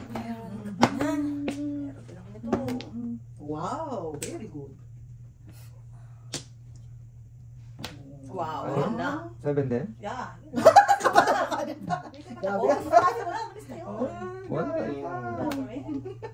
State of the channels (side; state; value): both; identical; correlation 1.00